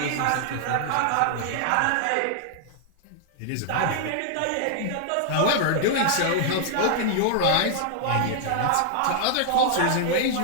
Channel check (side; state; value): both; different; correlation -0.01